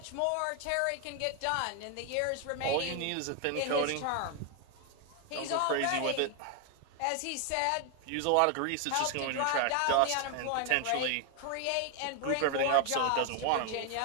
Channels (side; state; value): both; different; correlation 0.01